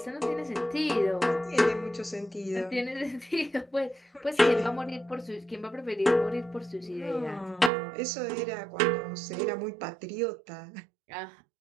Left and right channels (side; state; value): left; drops out; at 7.7 s